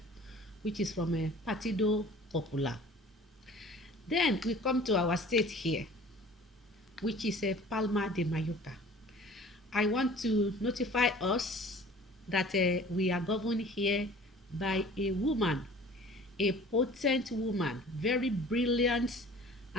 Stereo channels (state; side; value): normal; both; correlation 0.47